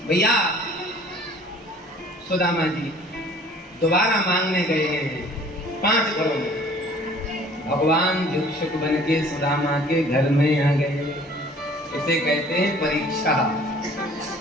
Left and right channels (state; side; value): normal; both; correlation 0.52